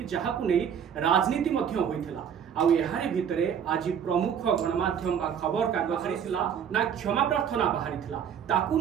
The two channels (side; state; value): left; quieter; 8.2 dB